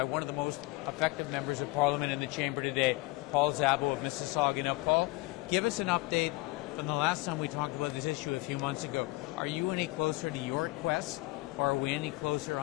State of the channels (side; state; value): right; quieter; 22.7 dB